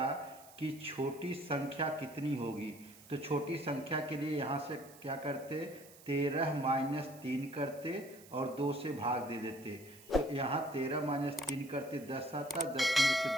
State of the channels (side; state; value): right; noise; hiss, 21 dB below the sound